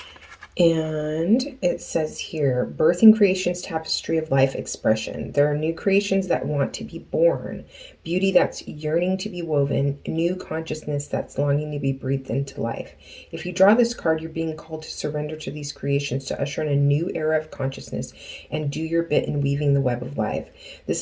And it says here, birthing creation's tapestry of life expression. There are new creations that want to be born, beauty that's yearning to be woven, new consciousness that's longing to be breathed into life. If you draw this card, you're being called to surrender to these creations, to usher in a new era of consciousness and do your bit in weaving the web of life. This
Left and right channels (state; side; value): identical; both; correlation 1.00